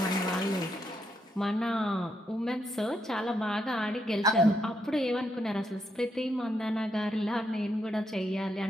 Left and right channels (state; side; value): normal; both; correlation 0.79